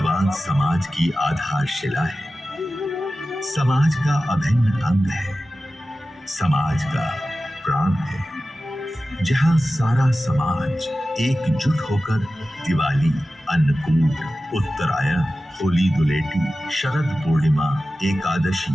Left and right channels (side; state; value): both; normal; correlation 0.94